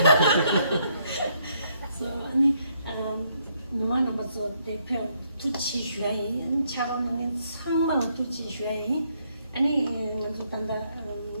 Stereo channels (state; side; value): inverted; both; correlation -0.73